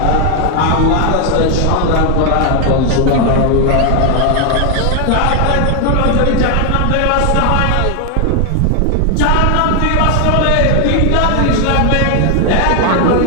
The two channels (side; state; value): both; different; correlation 0.00